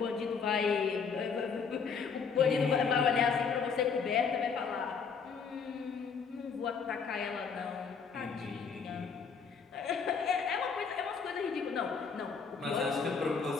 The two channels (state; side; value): quieter; right; 5.8 dB